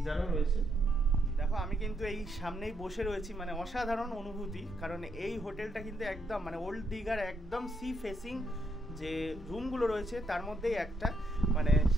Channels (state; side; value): normal; both; correlation 0.76